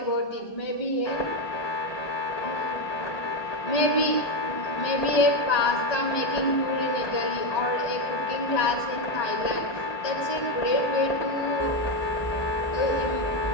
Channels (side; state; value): right; late; 1.2 ms